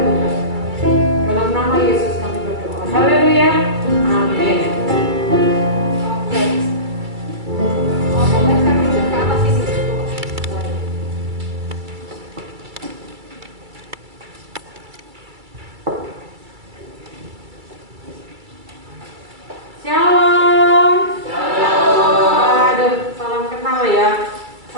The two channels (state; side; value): late; left; 2.3 ms